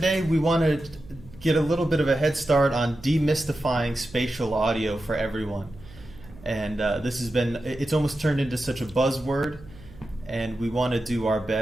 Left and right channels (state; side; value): noise; right; hum, 20 dB below the sound